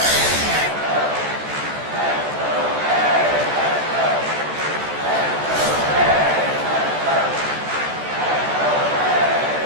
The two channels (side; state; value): left; late; 14 ms